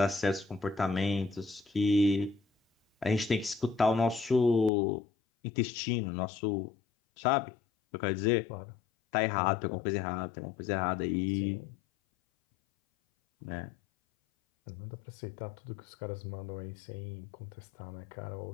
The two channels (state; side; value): drops out; right; at 4.7 s